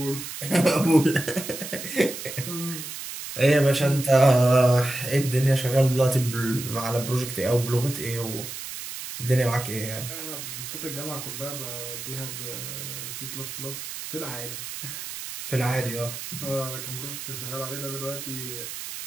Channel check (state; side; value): noise; right; hiss, 8 dB below the sound